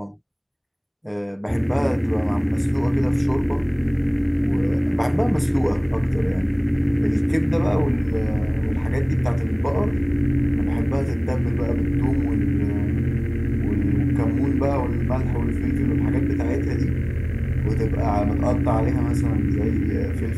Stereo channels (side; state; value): both; identical; correlation 1.00